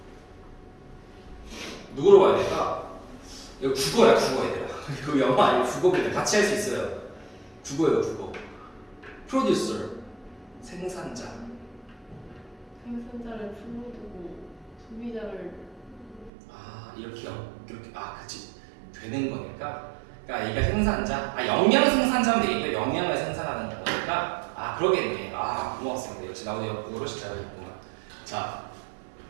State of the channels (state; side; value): drops out; left; at 16.3 s